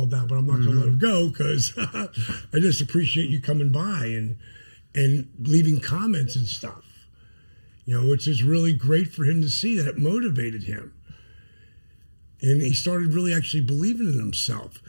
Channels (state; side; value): inverted; both; correlation -1.00